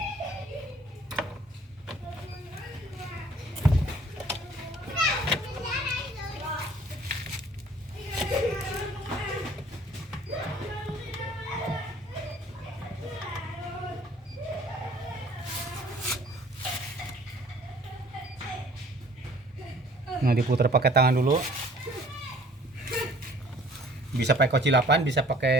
Nah, diputar pakai tangan dulu. Bisa pakai kocilapan, bisa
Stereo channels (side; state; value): both; normal; correlation 0.54